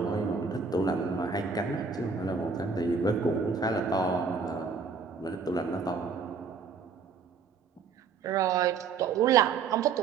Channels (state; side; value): quieter; left; 5.3 dB